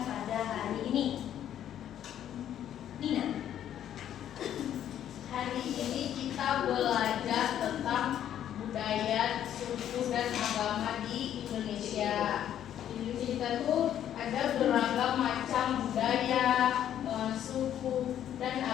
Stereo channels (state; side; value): quieter; right; 10.6 dB